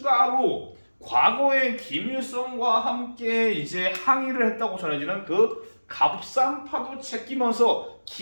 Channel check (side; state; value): both; inverted; correlation -1.00